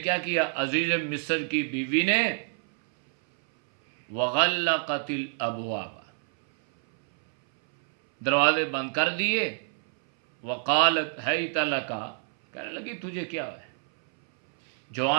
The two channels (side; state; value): left; silent; 60 dB below the other